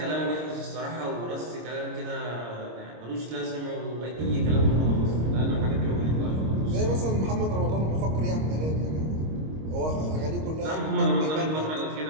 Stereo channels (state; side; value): late; left; 26 ms